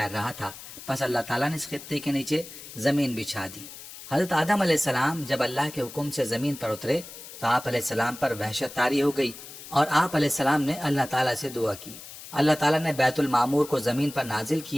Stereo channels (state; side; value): noise; left; hiss, 14 dB below the sound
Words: رہا تھا، پس اللہ تعالیٰ نے اس خطے کے نیچے زمین بچھا دی۔ حضرت آدم علیہ السلام جب اللہ کے حکم سے زمین پر اترے تو آپ علیہ السلام پر وحشت طاری ہو گئی اور آپ علیہ السلام نے اللہ تعالیٰ سے دعا کی۔ اللہ تعالیٰ نے بیت المعمور کو زمین پر نازل